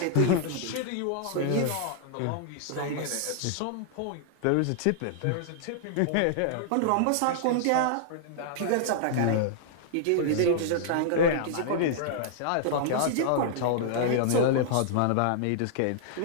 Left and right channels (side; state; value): both; different; correlation -0.01